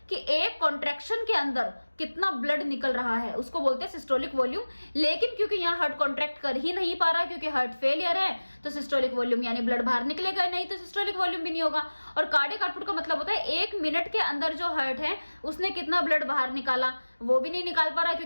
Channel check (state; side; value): inverted; both; correlation -1.00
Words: कि एक कॉन्ट्रैक्शन के अंदर कितना ब्लड निकल रहा है उसको बोलते हैं सिस्टोलिक वॉल्यूम। लेकिन क्योंकि यहाँ हार्ट कॉन्ट्रैक्ट कर ही नहीं पा रहा क्योंकि हार्ट फेलियर है, तो सिस्टोलिक वॉल्यूम यानी ब्लड बाहर निकलेगा नहीं, तो सिस्टोलिक वॉल्यूम भी नहीं होगा। और कार्डियक आउटपुट का मतलब होता है 1 मिनट के अंदर जो हार्ट है उसने कितना ब्लड बाहर निकाला, वो भी नहीं निकाल पा रहा